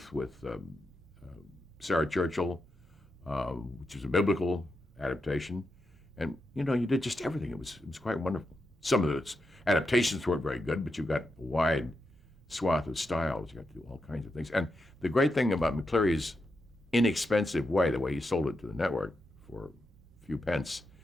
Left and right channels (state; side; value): normal; both; correlation 0.86